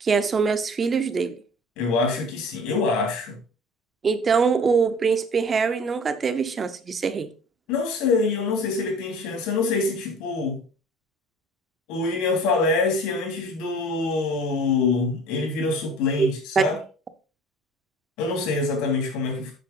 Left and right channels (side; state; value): both; normal; correlation 0.44